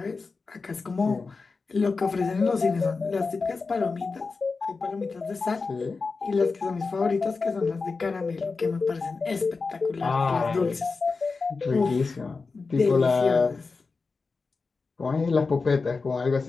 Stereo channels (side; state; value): right; quieter; 4.3 dB